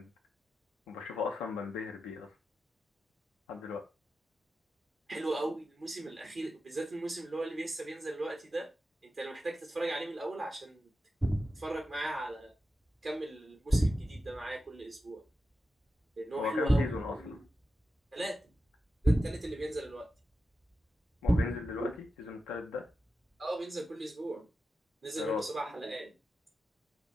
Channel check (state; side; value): normal; both; correlation 0.91